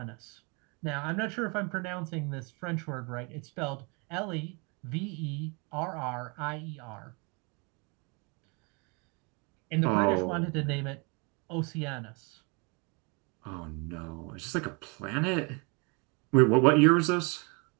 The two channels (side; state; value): left; quieter; 31.7 dB